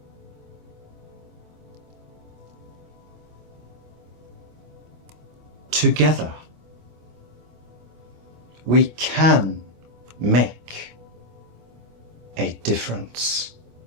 Together, We can make a difference.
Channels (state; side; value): late; left; 25 ms